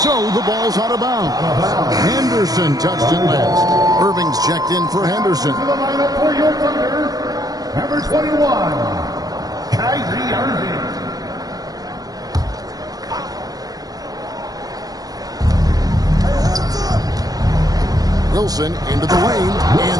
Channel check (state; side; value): late; left; 0.18 ms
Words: the ball's out of bounds. Henderson touched it last. Irving's checked in for Henderson. To the lineup for your Thunder, number 21, Kyrie Irving. Wilson into the lane,